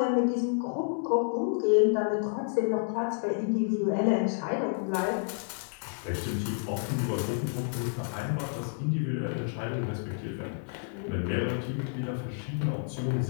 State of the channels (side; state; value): right; silent; 58 dB below the other